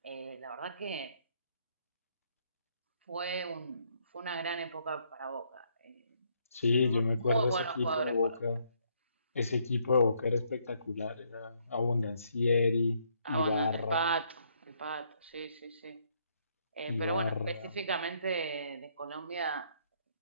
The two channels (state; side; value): inverted; both; correlation -0.71